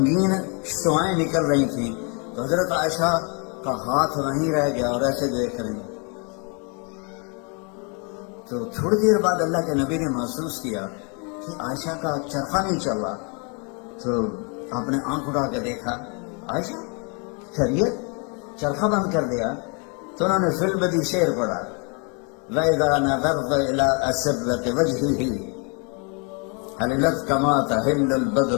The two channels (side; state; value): right; quieter; 35.5 dB